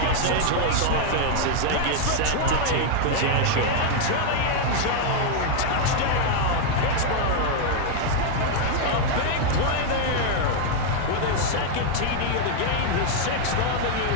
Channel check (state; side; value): different; both; correlation 0.00